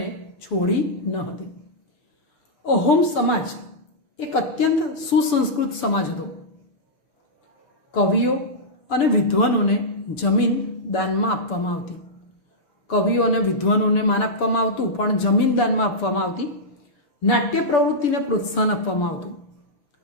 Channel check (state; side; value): late; right; 6.9 ms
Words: છોડી ન હતી. અહોમ સમાજ એક અત્યંત સુસંસ્કૃત સમાજ હતો. કવિઓ અને વિદ્વાનોને જમીન દાનમાં આપવામાં આવતી. કવિઓ અને વિદ્વાનોને માન આપવામાં આવતું, પણ જમીન દાનમાં આપવામાં આવતી. નાટ્ય પ્રવૃત્તિને પ્રોત્સાહન આપવામાં આવતું.